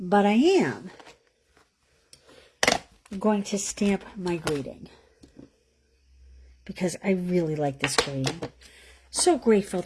I am going to stamp my greeting because I really like this green. So grateful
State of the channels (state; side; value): identical; both; correlation 1.00